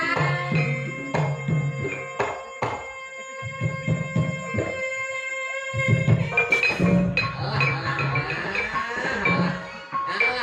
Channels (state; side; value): identical; both; correlation 1.00